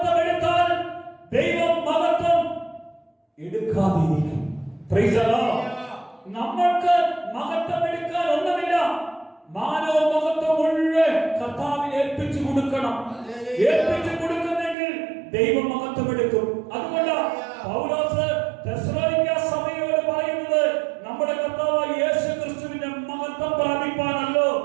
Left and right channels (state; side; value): drops out; left; at 14.8 s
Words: എടുത്താൽ ദൈവം മഹത്വം എടുക്കാതിരിക്കും. Price the Lord. നമ്മൾക്ക് മഹത്വം എടുക്കാൻ ഒന്നുമില്ല. മാനവ മഹത്വം മുഴുവൻ കർത്താവിന് ഏൽപ്പിച്ചു കൊടുക്കണം. ഏൽപ്പിച്ചു കൊടുക്കുന്നെങ്കിൽ ദൈവം മഹത്വം എടുക്കും. അതുകൊണ്ട് പൗലോസ് തെസ്സലോനിക്ക സഭയോട് പറയുന്നത്, നമ്മുടെ കർത്താവായ യേശു ക്രിസ്തുവിന്റെ മഹത്വം പ്രാപിപ്പാനല്ലോ